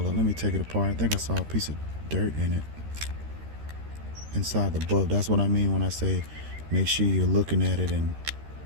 on, let me take it apart. I think I saw a piece of dirt in it. Inside the bulb. That's what I mean when I say make sure you're looking at it and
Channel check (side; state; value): left; late; 13 ms